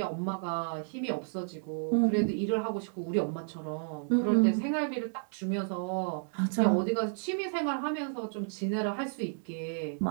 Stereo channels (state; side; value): silent; left; digital silence